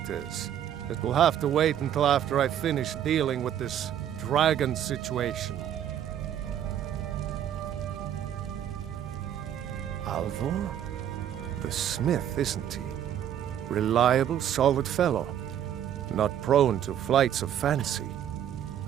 is, it will have to wait until after I finish dealing with this dragon situation. Alvor? The smith, isn't he? Reliable, solid fellow. Not prone to flights of fancy.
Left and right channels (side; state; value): left; quieter; 10.2 dB